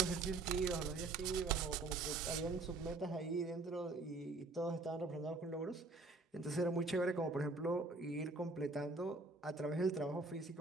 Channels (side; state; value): left; quieter; 3.3 dB